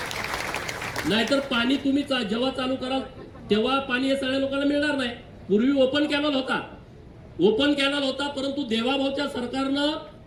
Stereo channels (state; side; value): identical; both; correlation 1.00